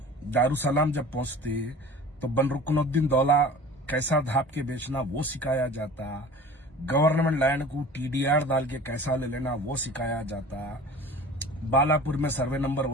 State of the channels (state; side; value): normal; both; correlation 0.41